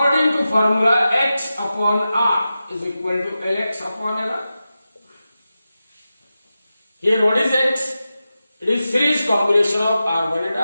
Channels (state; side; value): inverted; both; correlation -0.92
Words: to formula, X upon R is equal to Lx upon Lr. Here what is X? It is series combination of R1 and